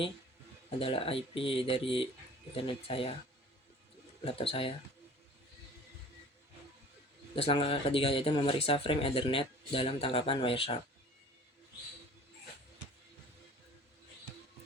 adalah IP dari internet saya, laptop saya. Terus langkah ketiga yaitu memeriksa frame Ethernet dalam tangkapan Wireshark.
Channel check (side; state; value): both; normal; correlation 0.46